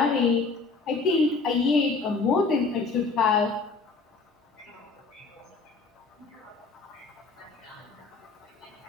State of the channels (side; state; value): right; quieter; 4.2 dB